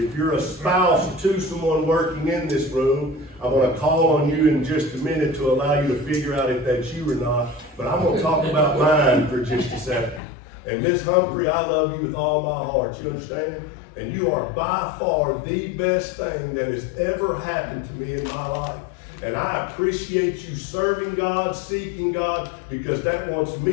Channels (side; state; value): right; drops out; at 10.2 s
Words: you're a spouse to someone working in this room, I'm going to call on you in just a minute to allow you to figure out if that's you or not. But I'm going to talk about mine for just a second. And Miss Humphrey, I love you with all my heart. You understand? And you are by far the best thing that has ever happened to me in my life. And I appreciate you serving God, seeking God, because that wants